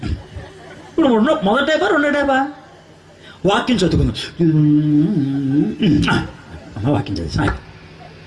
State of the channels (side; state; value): both; identical; correlation 1.00